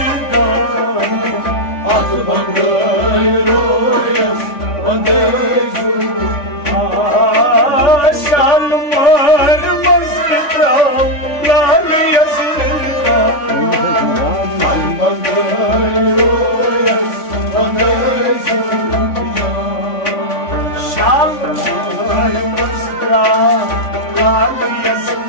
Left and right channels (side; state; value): right; late; 3.5 ms